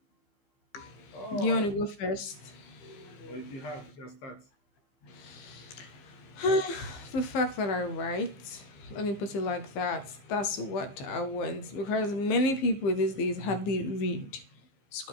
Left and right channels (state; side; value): late; right; 15 ms